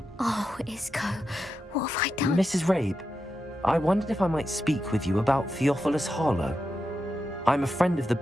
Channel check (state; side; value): normal; both; correlation 0.88